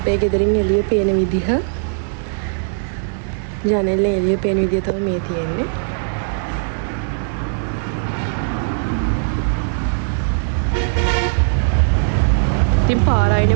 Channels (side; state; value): left; silent; 60 dB below the other